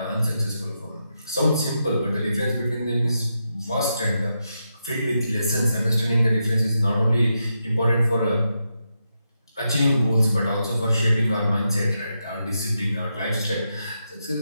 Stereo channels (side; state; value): both; inverted; correlation -0.85